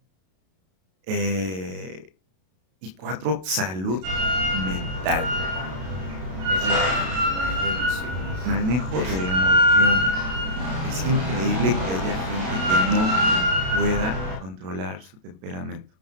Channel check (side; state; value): left; late; 32 ms